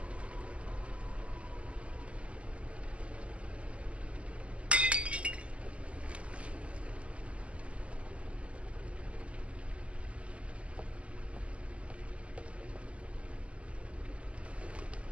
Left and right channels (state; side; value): late; left; 0.058 ms